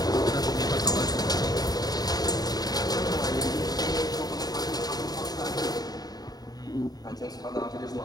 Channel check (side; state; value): right; late; 0.19 ms